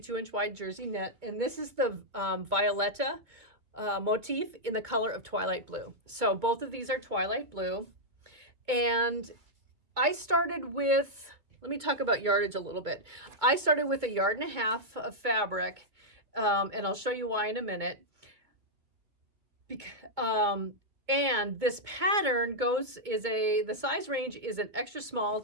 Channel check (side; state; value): left; late; 2.2 ms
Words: wide jersey knit, and this is the Violetta motif in the color of Twilight Blue. So both of these are Twilight Blue, and I started with, let me talk about yardage a little bit. I started with 1.5 yards of fabric, and I'll show you why in a minute. And this pattern the size range is an extra small